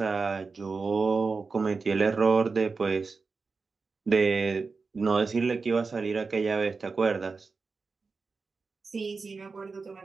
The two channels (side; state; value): left; quieter; 4.4 dB